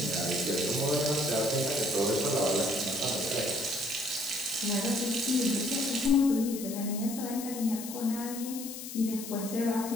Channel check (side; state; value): left; noise; hiss, 10 dB below the sound